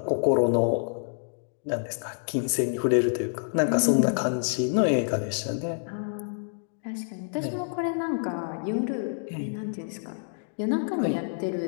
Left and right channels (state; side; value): silent; right; digital silence